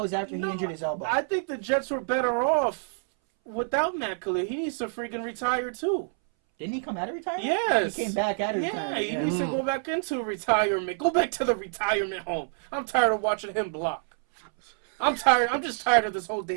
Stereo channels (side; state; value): left; silent; 60 dB below the other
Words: was after he injured his elbow. I think the Jets were better off without Matt Khalil. He needs to freaking retire, too. Didn't he come out of retirement? Yes. He came back out of retirement. Yeah, he needs to go back into retirement. Go back to the retirement home. I'm tired of watching him block. I'm tired. I'm just tired of this whole